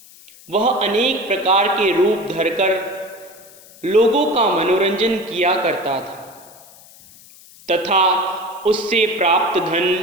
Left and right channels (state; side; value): noise; left; hiss, 23 dB below the sound